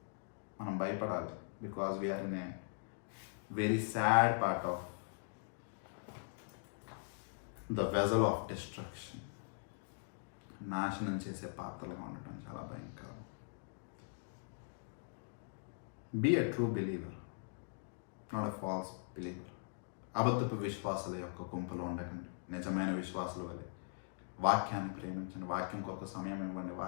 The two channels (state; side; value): silent; right; digital silence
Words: మనం భయపడాలి. Because we're in a very sad part of the vessel of destruction. నాశనం చేసే పాత్రలుగా ఉండటం చాలా భయంకరం. Be a true believer, not a false believer. అబద్ధపు విశ్వాసుల యొక్క గుంపులో ఉండకండి, నిజమైన విశ్వాసుల వలె వాక్యాన్ని ప్రేమించండి, వాక్యం కొరకు సమయం ఇవ్వండి,